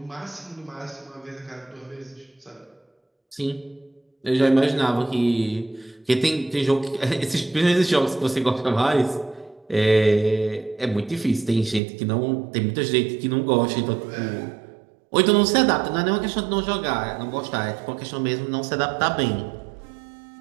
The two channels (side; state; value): left; drops out; at 11.8 s